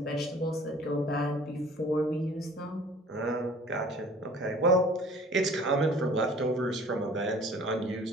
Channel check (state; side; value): normal; both; correlation 0.50